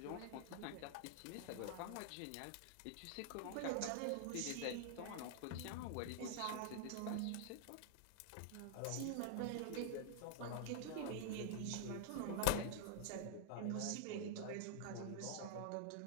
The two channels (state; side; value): different; both; correlation -0.01